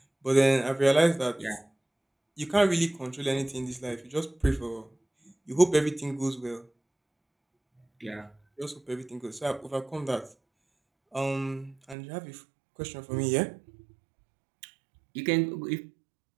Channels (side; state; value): left; drops out; at 12.0 s